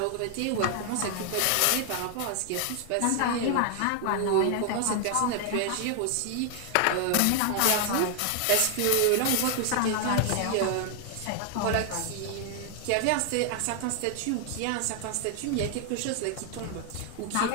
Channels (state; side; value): different; both; correlation 0.00